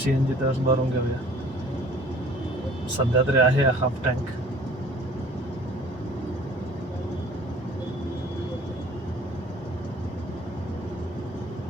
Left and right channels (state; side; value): normal; both; correlation 0.51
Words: तर भरून घेऊया. सध्या तरी आहे हाफ टँक.